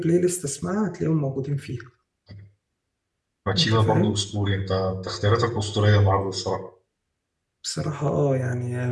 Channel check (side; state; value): both; identical; correlation 1.00